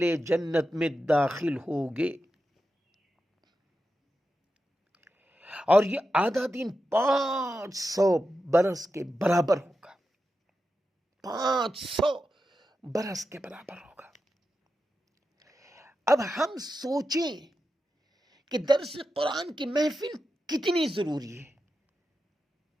جنت میں داخل ہوگے، اور یہ آدھا دن 500 برس کے برابر ہوگا۔ 500 برس کے برابر ہوگا۔ اب ہم سوچیں کہ درس قرآن کی محفل کتنی ضروری ہے۔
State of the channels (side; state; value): both; normal; correlation 0.90